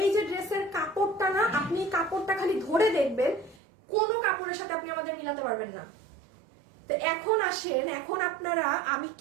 যে ড্রেসের কাপড়টা না, আপনি কাপড়টা খালি ধরে দেখবেন, কোনো কাপড়ের সাথে আপনি আমাদের মিলাতে পারবেন না। তো এখন আসেন, এখন আপনারা, আমি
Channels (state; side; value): drops out; left; at 3.6 s